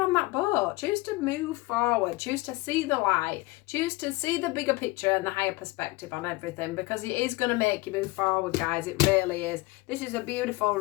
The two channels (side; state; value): right; quieter; 21.7 dB